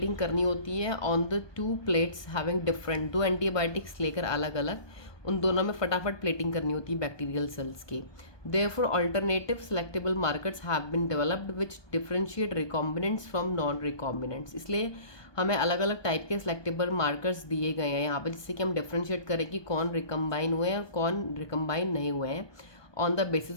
करनी होती है on the two plates having different, दो एंटीबायोटिक्स लेकर अलग अलग उन दोनों में फटाफट प्लेटिंग करनी होती है बैक्टीरियल सेल्स की। Therefore alternative selectable markers have been developed which differentiate recombinants from non recombinants. इसलिए हमें अलग अलग टाइप के सेलेक्टेबल मार्कर्स दिए गए हैं यहाँ पर, जिससे कि हम डिफरेंशिएट करें कि कौन रिकम्बाइन हुए हैं और कौन रिकम्बाइन नहीं हुए हैं on the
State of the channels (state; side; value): late; right; 1.2 ms